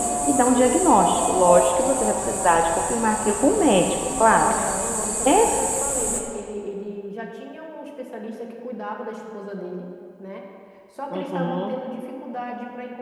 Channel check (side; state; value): both; identical; correlation 1.00